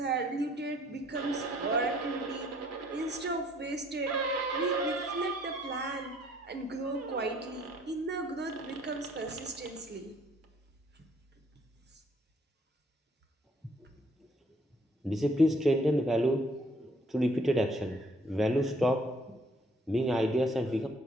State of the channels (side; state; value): both; normal; correlation 0.63